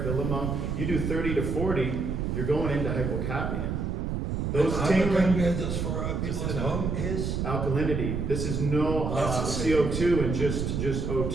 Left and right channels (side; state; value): right; noise; rumble, 1 dB below the sound